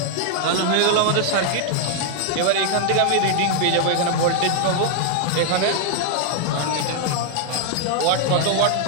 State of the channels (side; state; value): both; different; correlation 0.00